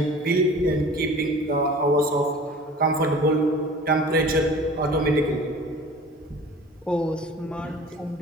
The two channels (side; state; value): both; normal; correlation 0.43